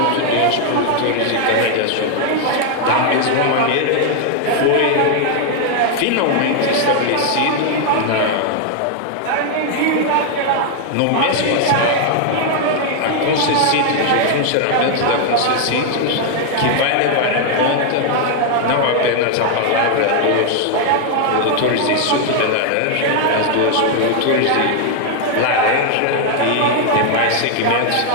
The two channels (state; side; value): different; both; correlation 0.00